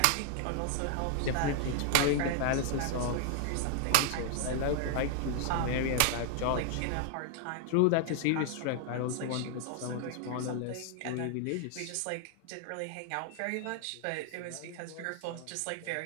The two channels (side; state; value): both; different; correlation 0.00